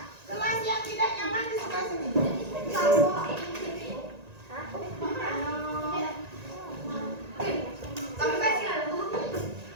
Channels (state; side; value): late; left; 1.9 ms